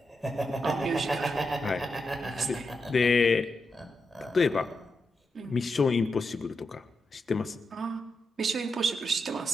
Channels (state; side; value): normal; both; correlation 0.86